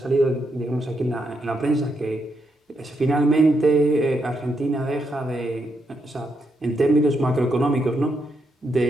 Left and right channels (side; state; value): both; normal; correlation 0.80